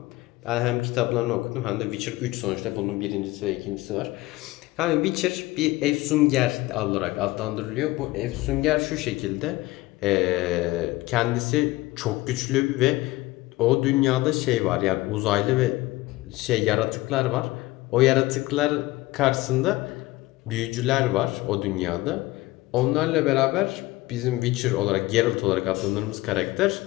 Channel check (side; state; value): right; quieter; 19.2 dB